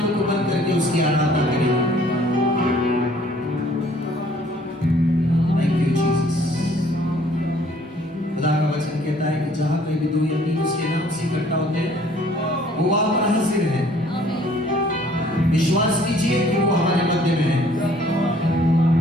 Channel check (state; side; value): normal; both; correlation 0.58